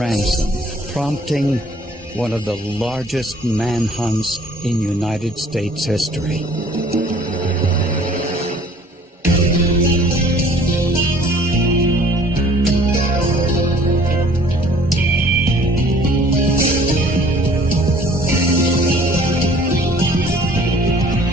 prompting one of the largest manhunts in United States history.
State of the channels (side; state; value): both; normal; correlation 0.54